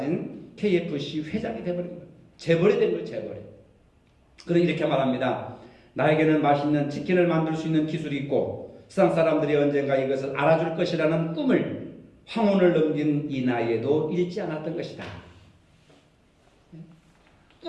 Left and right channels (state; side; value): identical; both; correlation 1.00